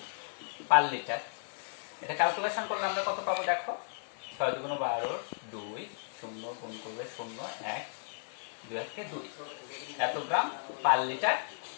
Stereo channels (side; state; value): right; silent; 55 dB below the other